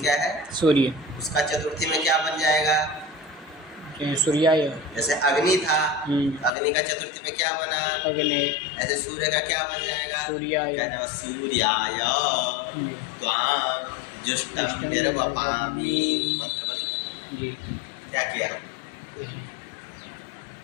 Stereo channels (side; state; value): right; drops out; at 6.5 s